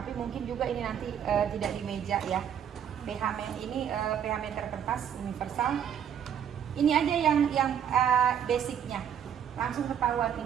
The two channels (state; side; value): quieter; left; 8.9 dB